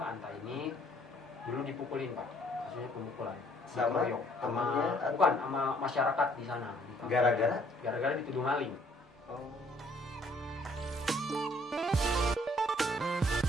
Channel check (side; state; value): both; normal; correlation 0.62